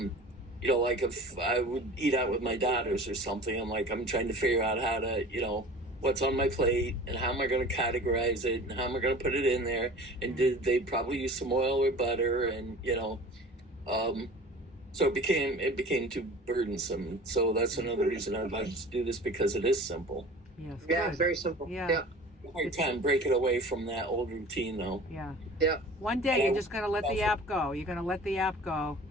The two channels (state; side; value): normal; both; correlation 0.41